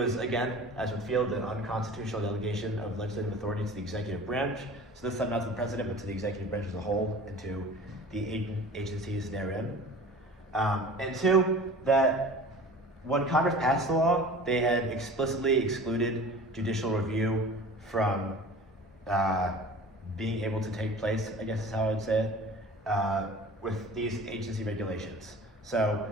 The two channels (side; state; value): both; normal; correlation 0.41